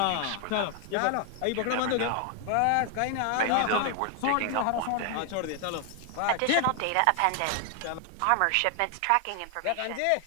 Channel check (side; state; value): both; different; correlation 0.00